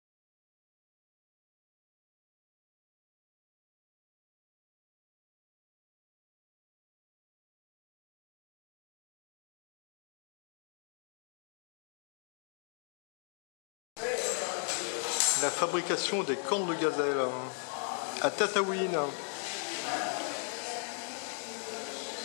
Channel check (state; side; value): silent; right; 51 dB below the other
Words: La fabrication des cornes de gazelle à Tataouine.